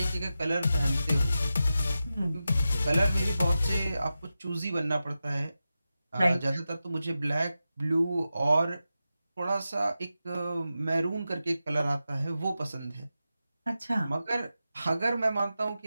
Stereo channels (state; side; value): inverted; both; correlation -0.92